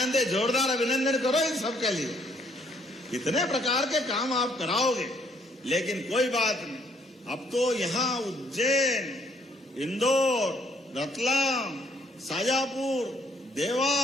है। जोरदार अभिनंदन करो इन सब के लिए। कितने प्रकार के काम आप कराओगे, लेकिन कोई बात नहीं। अब तो यहाँ उज्जैन, इंदौर, रतलाम, शाजापुर,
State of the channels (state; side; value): normal; both; correlation 0.67